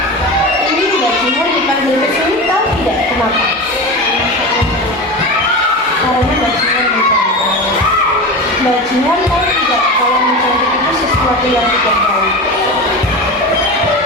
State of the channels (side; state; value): both; normal; correlation 0.26